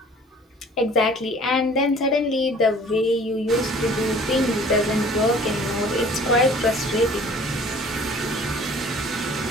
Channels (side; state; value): both; normal; correlation 0.50